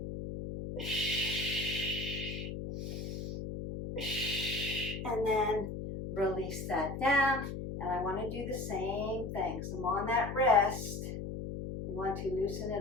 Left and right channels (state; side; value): noise; left; hum, 6 dB below the sound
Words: And then release that down, And I want to do the same thing. So I'm on that wrist. You want to loosen